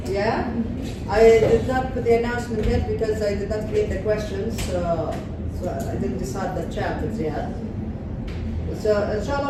Yeah, I did not put the announcement yet because I did not create the questions, so I didn't decide the chapters yet. So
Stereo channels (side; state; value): both; identical; correlation 1.00